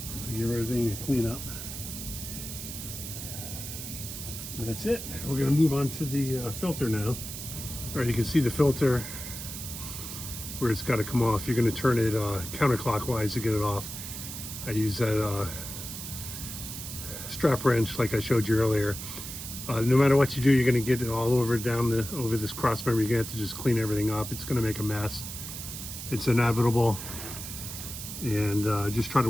Give everything a clean up. And that's it. We're going to move on to the filter now. All right, you can see the filter where it's got to come off. You're going to turn it counterclockwise to get it off. I use that strap wrench like I showed you earlier. No matter what you do, you're going to get it all over over this cross member. You're going to have to just clean everything up. It's going to make a mess. It's inevitable. And just try to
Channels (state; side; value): noise; right; hiss, 8 dB below the sound